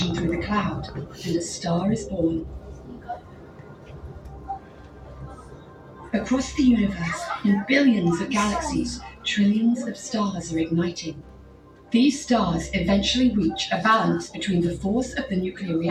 through the cloud, and a star is born. Across the universe, in billions of galaxies, trillions of stars are igniting. These stars eventually reach a balance between the force of the nuclear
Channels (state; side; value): identical; both; correlation 1.00